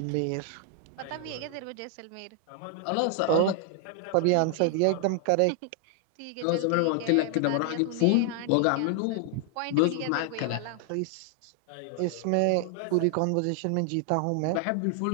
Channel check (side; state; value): both; different; correlation 0.00